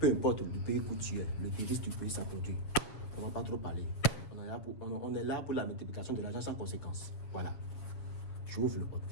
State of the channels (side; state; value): right; late; 7.3 ms